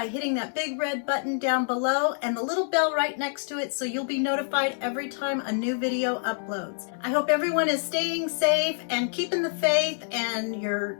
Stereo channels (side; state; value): right; silent; digital silence